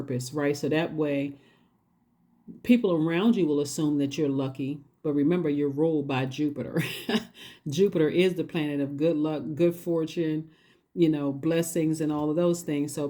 right? So that way people around you will assume that you're lucky. But remember, you're ruled by Jupiter. Jupiter is the planet of good luck, good fortune, blessings and all of those things. So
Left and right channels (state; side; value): identical; both; correlation 1.00